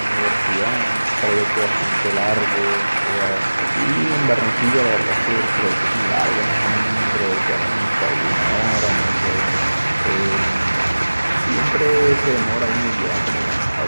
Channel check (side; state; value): both; inverted; correlation -1.00